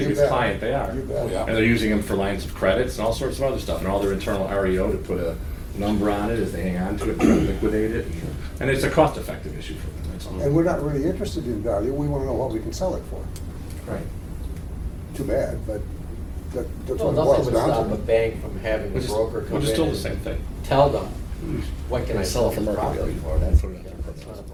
biggest bet. client, they are. You bet. Yeah. And they're using them for lines of credits and all sorts of other stuff, and all their internal REO to put a number on it as they hang on to it and try to liquidate it. And it's a cost-effective issue for them, that's all. And we're not really interested in value, we wanna know what we can sell it for. Right. Too bad, but that's Well, what it nothing boils would down stop a to. bank from having the Which is, broker come in which is still the and same thing. tell them, what can I sell for this market property value. for? That's not a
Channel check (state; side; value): identical; both; correlation 1.00